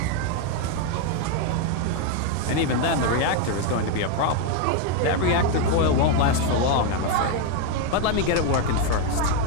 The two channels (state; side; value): different; both; correlation 0.01